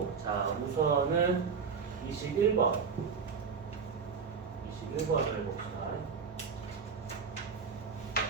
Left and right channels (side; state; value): left; quieter; 5.8 dB